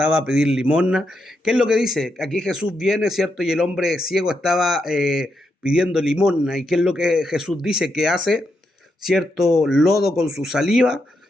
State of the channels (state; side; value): normal; both; correlation 0.82